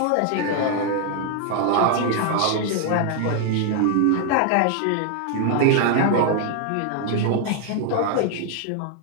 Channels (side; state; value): both; different; correlation 0.00